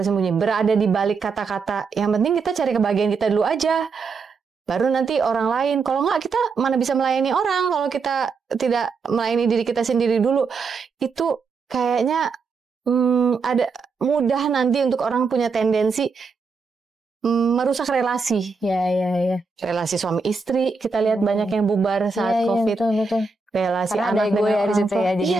berada di balik kata-kata. Yang penting kita cari kebahagiaan kita dulu aja. Baru nanti orang lain. Kalau nggak, kita mana bisa melayani orang kalau kita tidak melayani diri kita sendiri dulu. Itu kayaknya ada mudah nanti untuk orang punya tendensi merusak relasi. Ya. Relasi suami istri, kita lihat banyak yang bubar saat COVID. Betul. Relasi karena anak ada ego ya di situ ya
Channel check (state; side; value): quieter; left; 4.6 dB